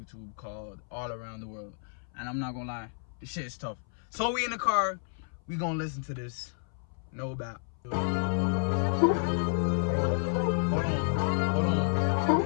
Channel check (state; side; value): silent; right; 57 dB below the other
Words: called All Around the World. And I'm not gonna lie, this shit is tough. So we in the car, we gonna listen to this. No doubt. Hold on.